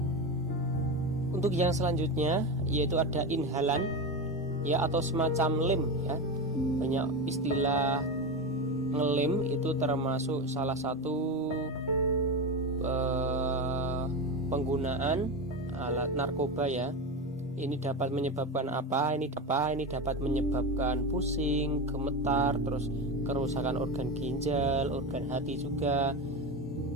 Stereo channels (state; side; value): normal; both; correlation 0.19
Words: Untuk yang selanjutnya yaitu ada inhalan ya, atau semacam lem ya. Banyak istilah ngelem itu termasuk salah satu penggunaan alat narkoba ya. Ini dapat menyebabkan apa? Ini dapat menyebabkan pusing, gemetar, terus kerusakan organ ginjal, organ hati juga.